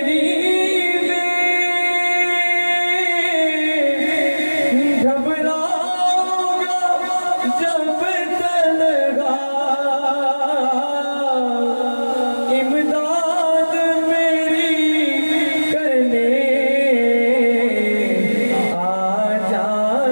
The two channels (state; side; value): inverted; both; correlation -1.00